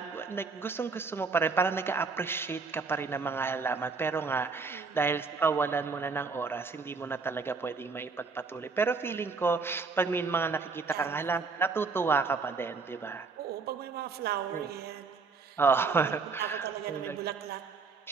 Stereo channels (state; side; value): quieter; left; 4.6 dB